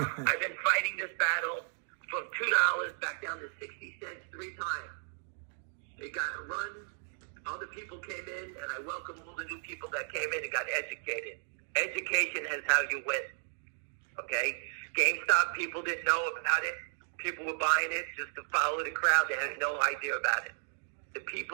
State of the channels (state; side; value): silent; left; 55 dB below the other